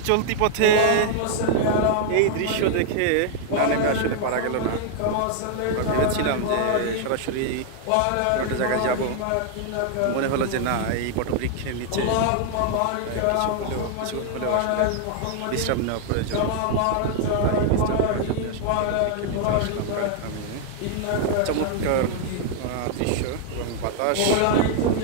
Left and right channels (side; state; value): both; different; correlation 0.00